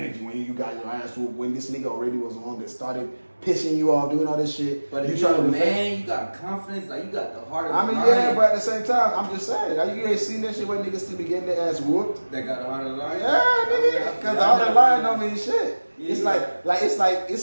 when you got your ass whooped. When this nigga already was the one that started pissing you off, doing all this shit. But if you're a man, you got confidence, like you got the heart of I mean, yeah, but at the same time, I'm just saying, like, you ain't seen that shit where niggas still be getting their ass whooped. They got the heart of the lion. Yeah, nigga, because the heart of the lion don't mean shit. It's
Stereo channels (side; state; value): both; inverted; correlation -1.00